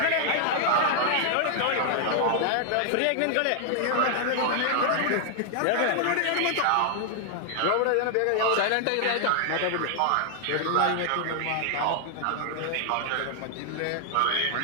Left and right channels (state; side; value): different; both; correlation 0.00